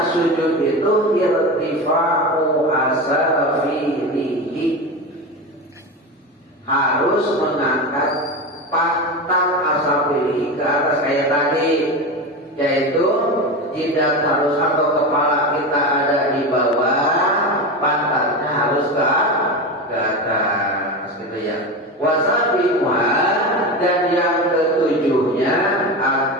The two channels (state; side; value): normal; both; correlation 0.22